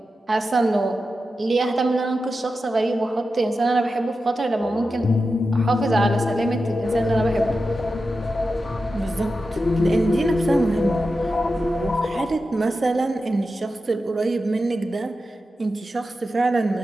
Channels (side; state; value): both; normal; correlation 0.91